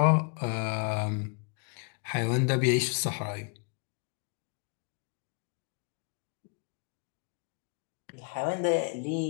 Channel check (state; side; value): quieter; right; 36.9 dB